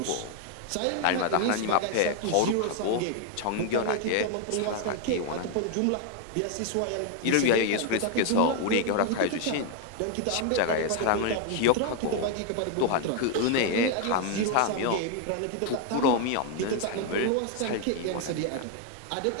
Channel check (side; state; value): both; different; correlation 0.01